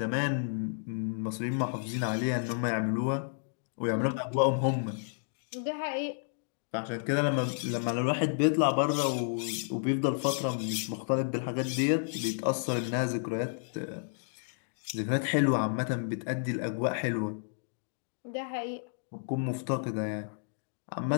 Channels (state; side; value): silent; right; digital silence